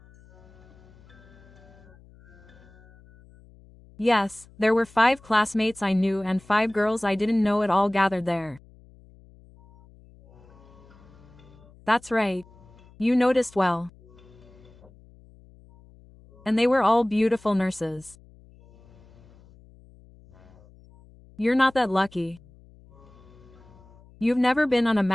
Yes, there were 5 classmates I knew and 5 girls I didn't know at all gathered there. That's right. You noticed well. And they were all beautiful nurses. You're not that lucky. You've never been on a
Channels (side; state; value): left; noise; hum, 25 dB below the sound